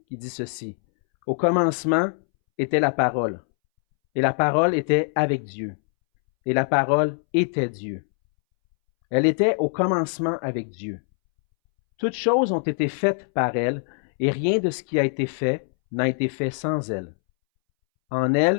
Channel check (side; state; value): right; silent; 63 dB below the other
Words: qui dit ceci. Au commencement était la parole, et la parole était avec Dieu, et la parole était Dieu. Elle était au commencement avec Dieu. Toutes choses ont été faites par elle, et rien de ce qui a été fait n'a été fait sans elle. En